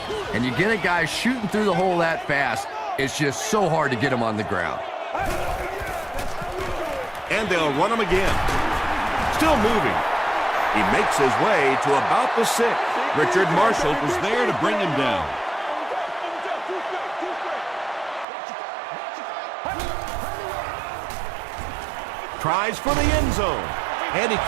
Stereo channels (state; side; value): drops out; left; at 18.2 s